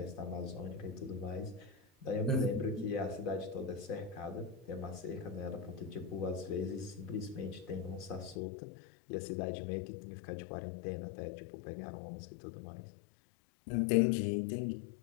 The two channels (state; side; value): drops out; right; at 8.3 s